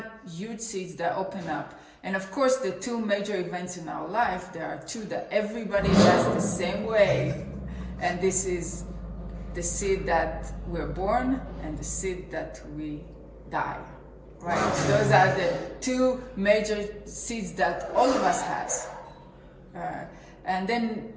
huge seed that open up. And of course, the two major events in our life, there are two that everybody does the same way. And this is the seed that we're born and the seed that we die, right? Those are the two major seeds that all of us has. And then,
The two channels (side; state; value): both; identical; correlation 1.00